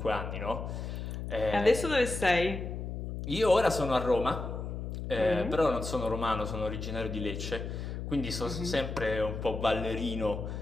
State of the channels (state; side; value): noise; left; hum, 6 dB below the sound